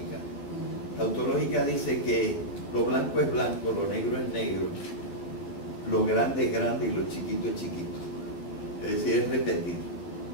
Tautológica dice que lo blanco es blanco, lo negro es negro, lo grande es grande y lo chiquito es chiquito. Es decir, es repetir.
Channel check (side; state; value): right; late; 12 ms